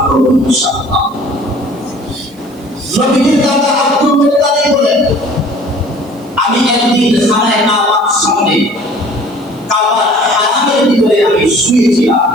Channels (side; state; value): right; noise; hiss, 28 dB below the sound